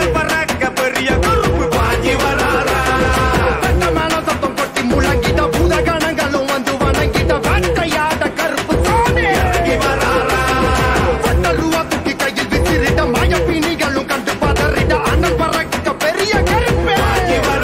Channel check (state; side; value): identical; both; correlation 1.00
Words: பறக்க பெரிய கருப்பு பாஞ்சி வராரா மேல சத்தம் கொட்டி முழங்கிட பூதகணங்களும் வந்து வணங்கிட வேட்டையாட கருப்பு சாமி இறங்கி வராரா ரூபா தூக்கி கையில் விசிறிட மயப்பிணிகளும் கண்டு பதறிட அண்ணல் பறக்க பெரிய கருப்பு பாஞ்சி